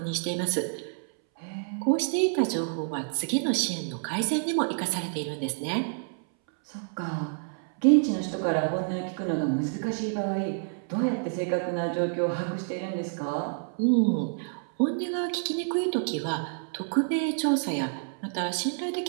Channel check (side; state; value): left; silent; 59 dB below the other